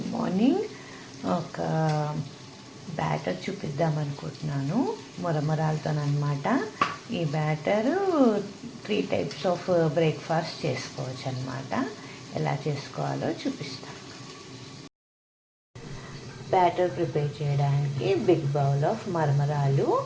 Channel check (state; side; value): identical; both; correlation 1.00